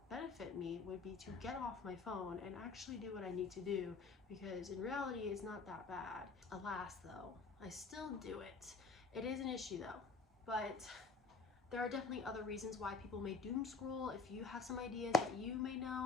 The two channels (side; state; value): right; quieter; 3.8 dB